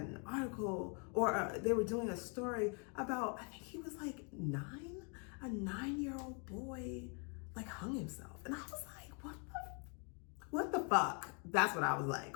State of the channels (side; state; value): right; quieter; 35.7 dB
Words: article, or they were doing a story about, I think he was like 9, a 9-year-old boy, hung himself. And I was like, fuck? That's what I was like.